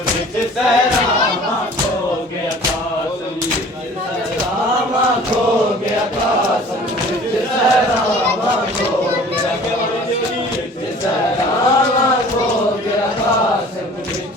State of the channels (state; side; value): normal; both; correlation 0.47